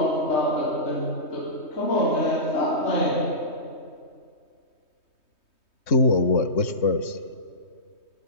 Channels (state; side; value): late; right; 3.2 ms